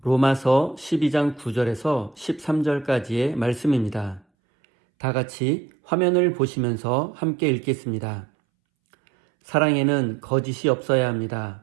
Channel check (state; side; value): drops out; left; at 4.2 s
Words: 로마서 12장 9절에서 13절까지의 말씀입니다. 다 같이 화면을 보시면서 함께 읽겠습니다. 사랑에는 거짓이 없어야